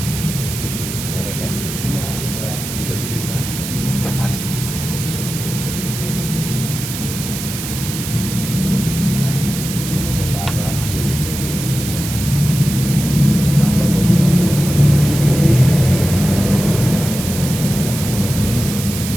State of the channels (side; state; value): right; noise; hiss, 7 dB below the sound